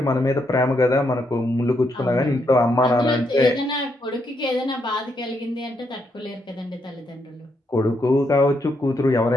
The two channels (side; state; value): both; normal; correlation 0.78